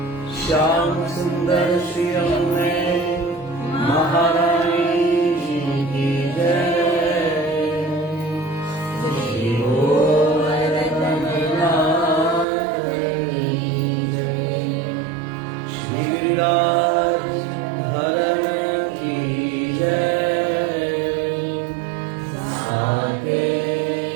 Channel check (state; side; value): drops out; left; at 12.5 s